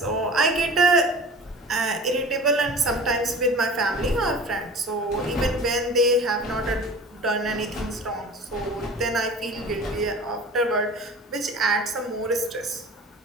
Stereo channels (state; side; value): normal; both; correlation 0.39